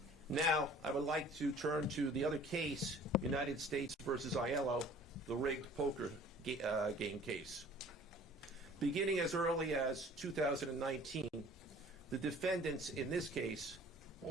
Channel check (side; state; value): both; normal; correlation 0.50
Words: Now, I would like to turn to the other case, United States versus Aiello, the rigged poker game case. Beginning as early as 2019, the defendants in this case